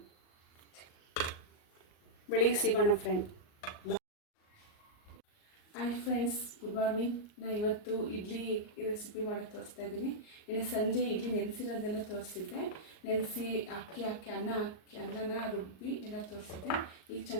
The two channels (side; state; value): right; late; 38 ms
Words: ಬೆಳಿಗ್ಗೆ ಸಿಗೋಣ friend. Hi friends, good morning. ನಾನು ಇವತ್ತು ಇಡ್ಲಿ ರೆಸಿಪಿ ಮಾಡೋಕ್ಕೆ ತೋರಿಸ್ತಾ ಇದ್ದೀನಿ. ಇನ್ನು ಸಂಜೆ ಇಡ್ಲಿ ನೆನೆಸಿರೋದೆಲ್ಲ ತೋರಿಸಿದ್ದೆ. ನೆನೆಸಿ ಅಕ್ಕಿ ಅನ್ನನ ರುಬ್ಬಿ ಎಲ್ಲ ತೋರಿಸಿದ್ದೆ. ಈಗ